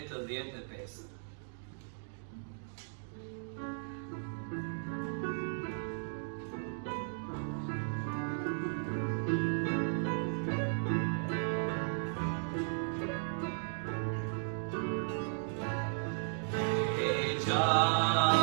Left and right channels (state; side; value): silent; left; digital silence